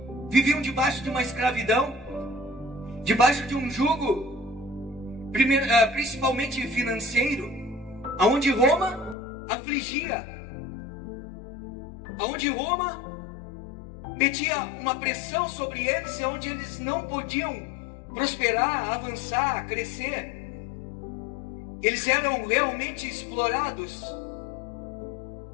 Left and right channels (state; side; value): drops out; right; at 9.2 s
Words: viviam debaixo de uma escravidão, debaixo de um jugo, principalmente financeiro, aonde Roma afligia, aonde Roma metia uma pressão sobre eles, onde eles não podiam prosperar, avançar, crescer. Eles eram realmente explorados.